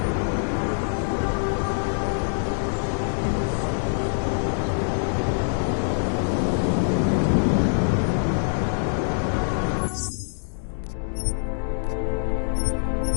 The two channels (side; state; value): right; silent; digital silence